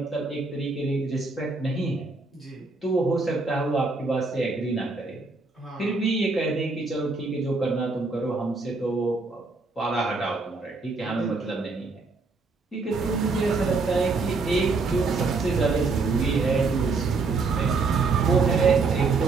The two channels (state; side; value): quieter; left; 4.0 dB